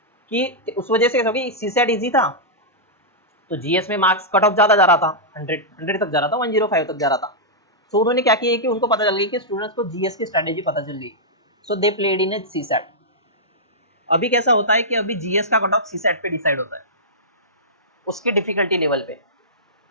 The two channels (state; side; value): normal; both; correlation -0.12